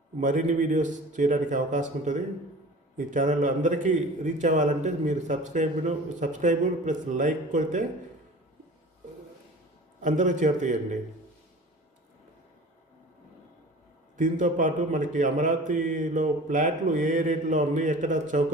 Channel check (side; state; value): both; normal; correlation 0.41